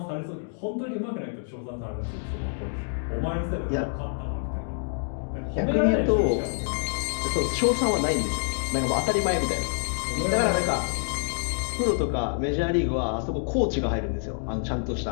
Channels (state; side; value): silent; right; digital silence